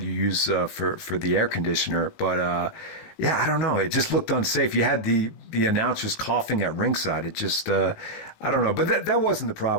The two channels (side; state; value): right; late; 18 ms